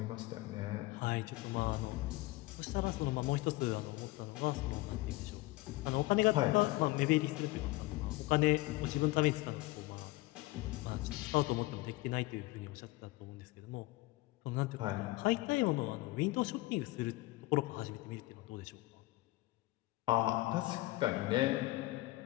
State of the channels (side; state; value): right; quieter; 19.8 dB